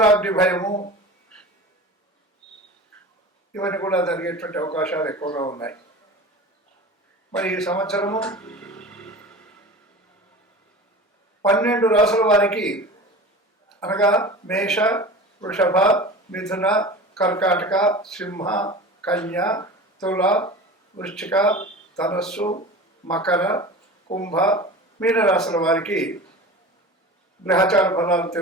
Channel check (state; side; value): normal; both; correlation 0.34